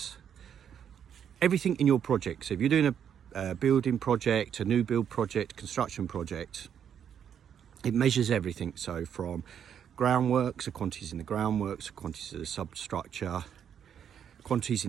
everything in your project. So if you're doing a building project, a new build project, construction project, it measures everything. So from groundworks, the quantities in the groundworks, the quantities of the substructure, quantities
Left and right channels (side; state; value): left; quieter; 8.6 dB